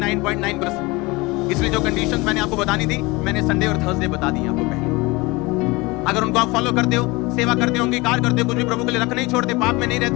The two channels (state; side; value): quieter; right; 23.7 dB